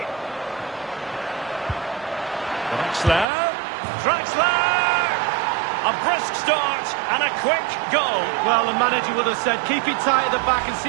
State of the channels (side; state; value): left; drops out; at 3.2 s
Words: Draxler! A brisk start and a quick goal. Well, the manager would have said, keep it tight at the back and see